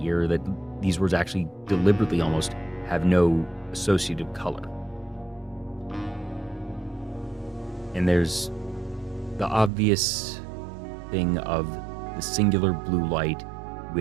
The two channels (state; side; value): drops out; left; at 9.7 s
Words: ear. That these words actually deliberately almost have no associative color. And there's the obvious thing of the singular blue light,